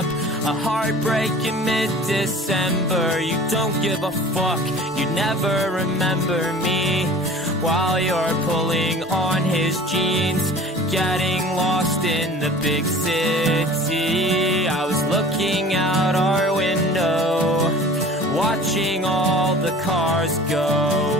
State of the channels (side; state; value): both; normal; correlation 0.43